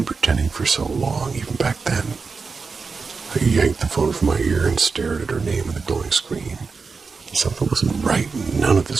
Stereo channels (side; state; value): left; quieter; 4.7 dB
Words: pretending for so long, even back then. I yanked the phone from my ear and stared at her name on the glowing screen. Something wasn't right. None of